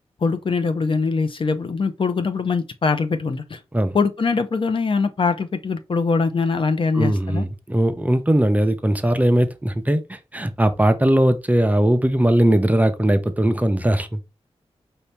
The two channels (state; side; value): normal; both; correlation 0.89